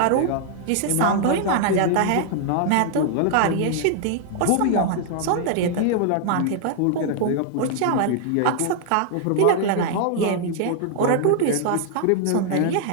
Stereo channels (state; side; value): different; both; correlation 0.00